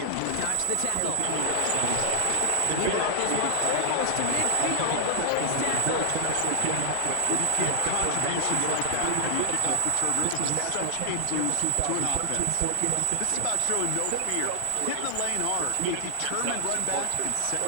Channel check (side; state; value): both; different; correlation 0.00